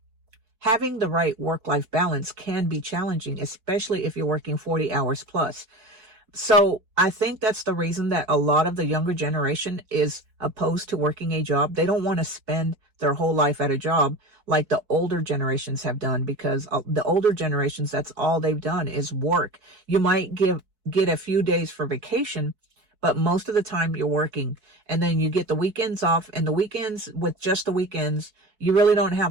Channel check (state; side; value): late; left; 4.6 ms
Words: having the right work-life balance can be challenging, especially if you're working 40 hours plus. So I think that's the reason that a lot of the younger generation is opposed to working a job. They don't want to spend their whole life at a job like the older generations have done, because the older generations, that's all they've done is work. You might get a few days for vacation, but most of the time you're working, and then you get the weekends off, and the weekends, with just the weekends, you really don't have